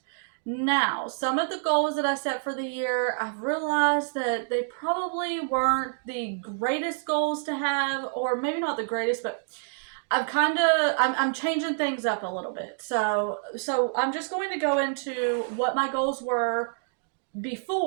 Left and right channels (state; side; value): silent; left; digital silence